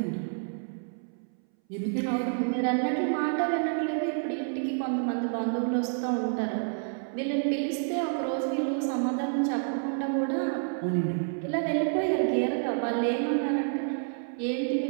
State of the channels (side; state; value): left; silent; 59 dB below the other